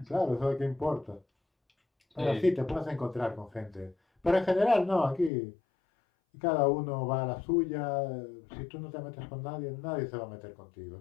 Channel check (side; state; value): right; drops out; at 5.3 s